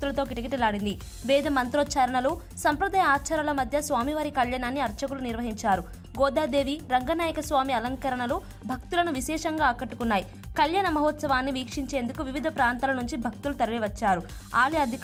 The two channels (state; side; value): identical; both; correlation 1.00